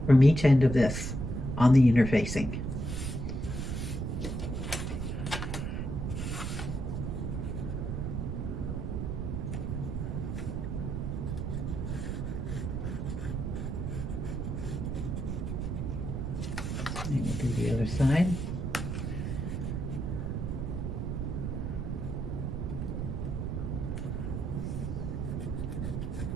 from each end of this on the interfacing. And we'll do the other side.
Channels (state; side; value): noise; right; rumble, 2 dB below the sound